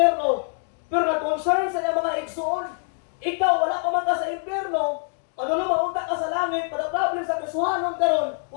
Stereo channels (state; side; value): silent; right; 55 dB below the other